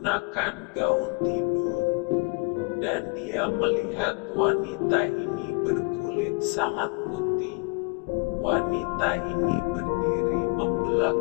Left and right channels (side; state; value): right; quieter; 33.2 dB